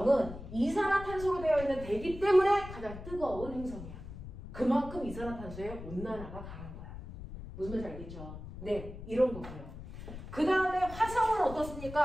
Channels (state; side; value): noise; left; rumble, 12 dB below the sound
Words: 이산화탄소로 되어 있는 대기 때문에 가장 뜨거운 행성이야. 그만큼 이산화탄소의 온난화가 강한 거야. 무슨 말인지 알겠죠? 네, 이런 거고요. 그 다음에 화성은